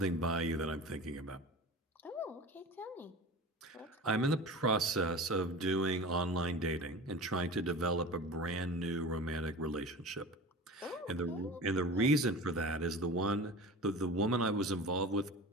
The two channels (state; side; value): normal; both; correlation 0.34